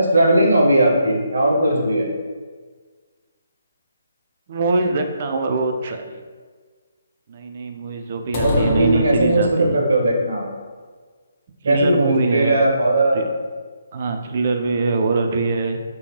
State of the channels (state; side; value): inverted; both; correlation -0.77